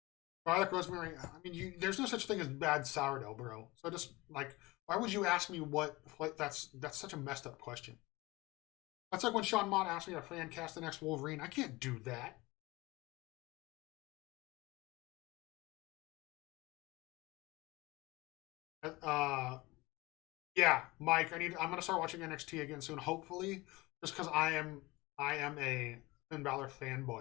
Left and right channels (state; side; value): quieter; right; 21.7 dB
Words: Garlic, rosemary. I mean, there's no such thing as bad sourdough, bro. So just like, why would you ask me what? That's such a messed up question. That's like when Sean Mott asked me to fan cast the next Wolverine. I can't do that. Uh, yeah, Mike. I'm gonna start watching NXT again soon. Hopefully, just because I am a Finn Balor